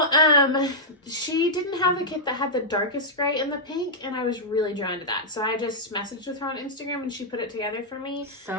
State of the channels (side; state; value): both; normal; correlation -0.09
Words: she didn't have the kit that had the darkest gray and the pink, and I was really drawn to that. So I just messaged with her on Instagram, and she put it together for me.